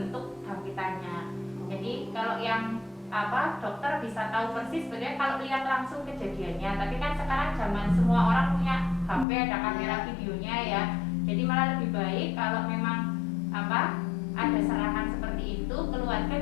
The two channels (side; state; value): right; drops out; at 9.2 s